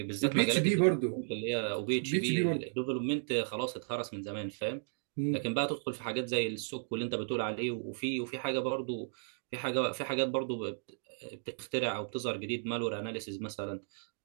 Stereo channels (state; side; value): silent; left; digital silence